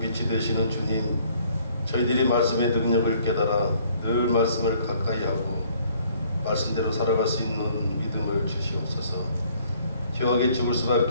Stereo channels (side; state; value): both; inverted; correlation -0.61